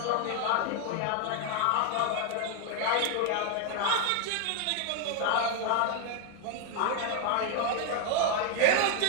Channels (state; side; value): different; both; correlation 0.00